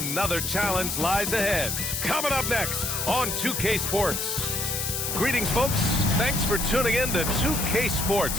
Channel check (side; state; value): left; noise; hiss, 2 dB below the sound